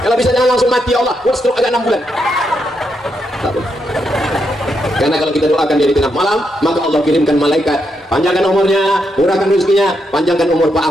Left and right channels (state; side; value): normal; both; correlation 0.81